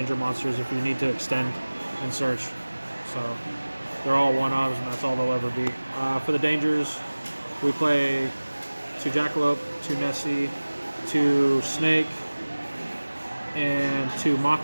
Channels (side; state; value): both; inverted; correlation -1.00